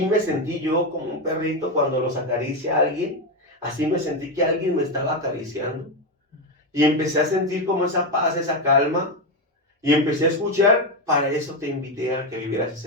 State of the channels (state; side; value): normal; both; correlation 0.10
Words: me sentí yo, como un perrito cuando los acaricia a alguien. Así me sentí que alguien me estaba acariciando. Y empecé a sentir como esa paz, esa calma. Y empecé a escuchar, para eso te invité a que vivieras